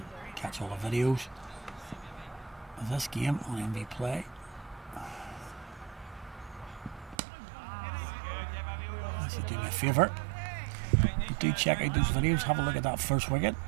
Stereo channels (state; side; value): drops out; left; at 7.2 s